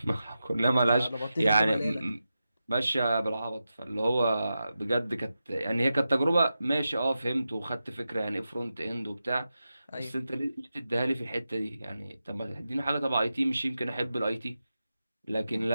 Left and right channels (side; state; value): both; inverted; correlation -0.91